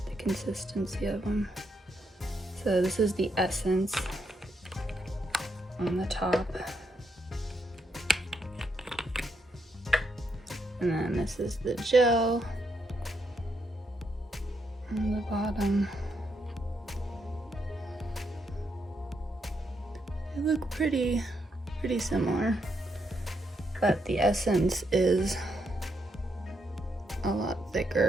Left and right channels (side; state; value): both; normal; correlation 0.79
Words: the consistency of them. So this is the Essence on the top. And then this is the gel on the bottom. They look pretty similar, but the Essence is a lot